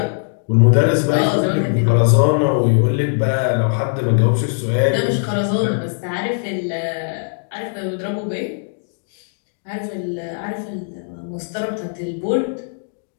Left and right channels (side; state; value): right; silent; digital silence